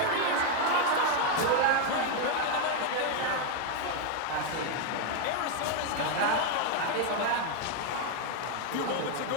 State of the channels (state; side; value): different; both; correlation 0.01